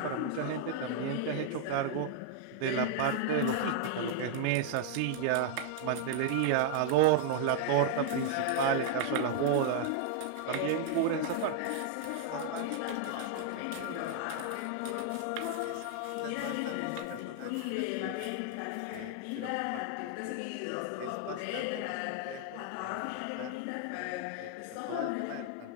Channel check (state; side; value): different; both; correlation 0.00